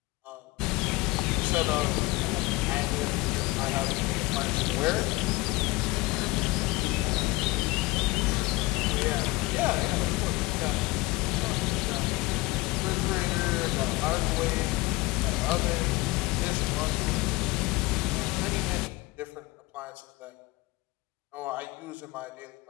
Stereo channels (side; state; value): right; quieter; 22.3 dB